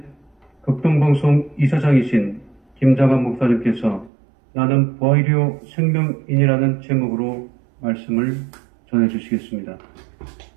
극동방송 이사장이신 김장한 목사님께서 나는 부활이요 생명인이라는 제목으로 말씀을 전해주시겠습니다.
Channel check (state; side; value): drops out; left; at 4.1 s